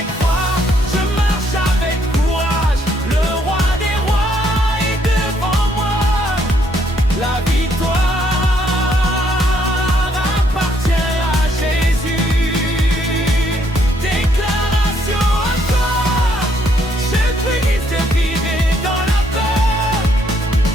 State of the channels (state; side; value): normal; both; correlation 0.70